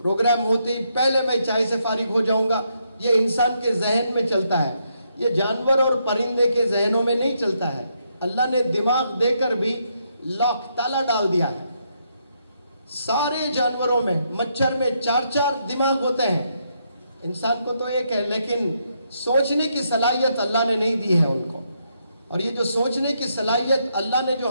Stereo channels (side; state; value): both; inverted; correlation -0.77